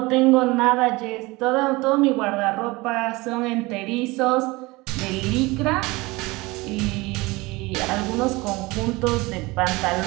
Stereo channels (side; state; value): left; quieter; 22.6 dB